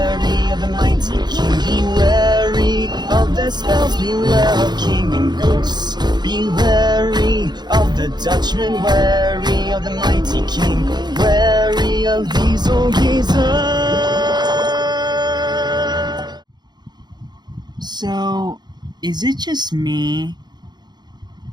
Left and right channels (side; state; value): left; late; 0.21 ms